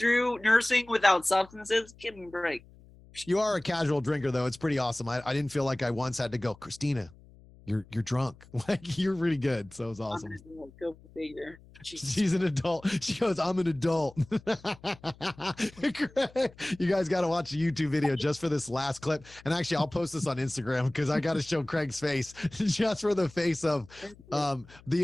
nursing without substances. Give me a break. You are a casual drinker, though. It's pretty awesome. I didn't feel like I once had to go, Christina, you're drunk. Like, you're really good. So it was awesome. Go figure. She's an adult. She goes, I'm an adult. You guys got to watch the YouTube video just for this last clip. And actually, I'll post this on Instagram because I got to show Craig's face just for the face of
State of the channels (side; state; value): left; noise; hum, 24 dB below the sound